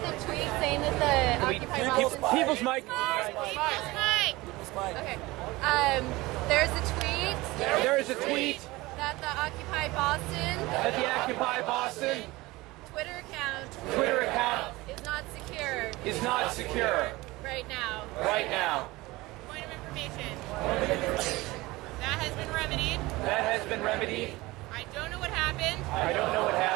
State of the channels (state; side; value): quieter; left; 20.6 dB